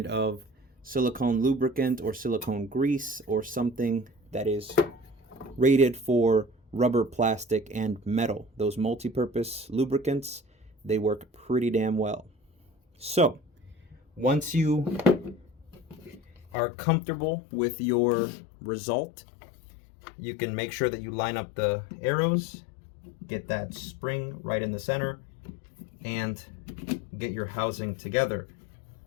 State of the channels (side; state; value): right; drops out; at 16.4 s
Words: of silicone lubricant or silicone grease, or something that is rated for rubber, plastic, and metal. Those multi-purpose lubricants, they work pretty damn well. So once you are comfortable with your result, you can make sure that you line up the arrows, get that spring right in the center, and get your housing together.